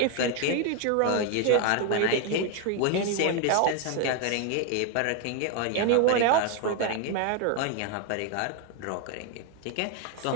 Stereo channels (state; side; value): different; both; correlation 0.01